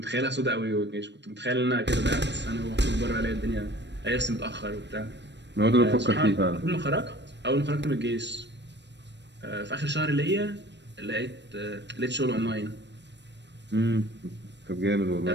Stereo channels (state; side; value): late; left; 0.51 ms